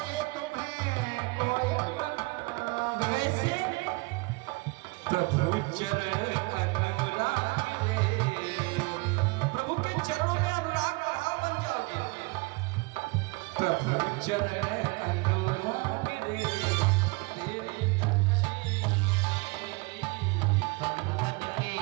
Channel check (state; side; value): quieter; left; 26.5 dB